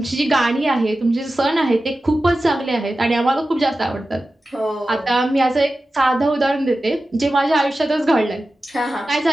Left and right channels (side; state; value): both; normal; correlation 0.94